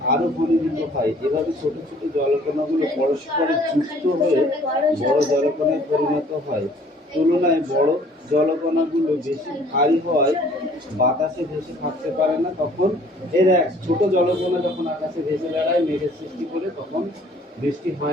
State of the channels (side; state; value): both; normal; correlation 0.56